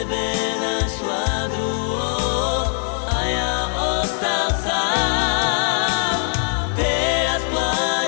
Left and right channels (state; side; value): silent; right; 65 dB below the other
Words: našla druhého a ja ostal sám. Teraz